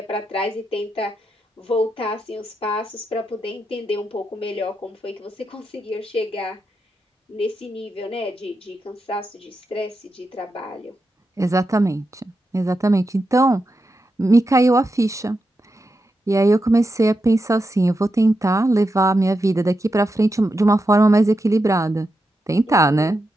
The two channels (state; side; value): normal; both; correlation 0.87